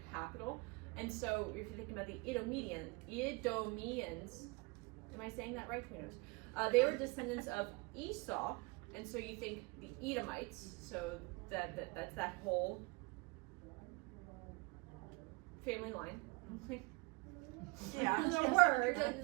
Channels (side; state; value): left; quieter; 26.8 dB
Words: capital. And so if you're thinking about the Edomians, am I saying that right? Who knows? They were descendants of Esau, and so you think the Edomites, so that's that whole family line. Yeah. The word,